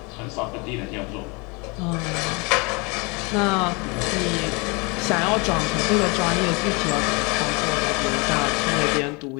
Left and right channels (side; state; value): right; quieter; 29.2 dB